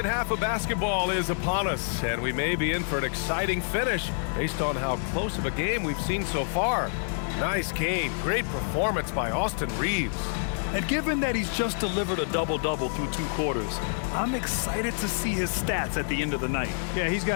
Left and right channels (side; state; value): right; silent; digital silence